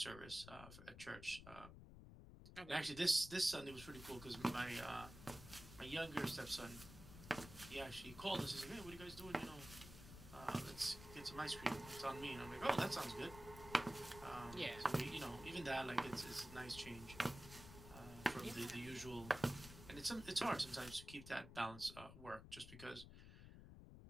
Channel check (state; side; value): noise; left; rumble, 14 dB below the sound